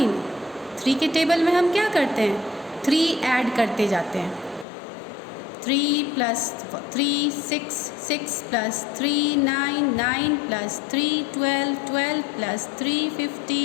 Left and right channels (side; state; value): right; drops out; at 4.7 s